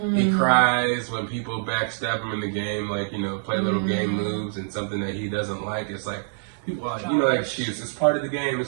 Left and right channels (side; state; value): left; silent; digital silence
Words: He cries when people backstab him in the game, like, play little game moves and something that he doesn't like. It's like, people are like, that excuse. It's part of the game.